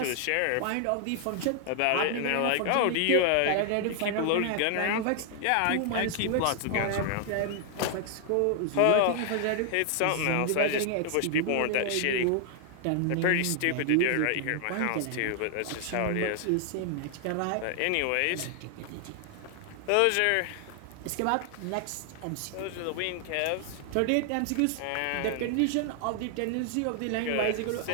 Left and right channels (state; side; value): different; both; correlation 0.00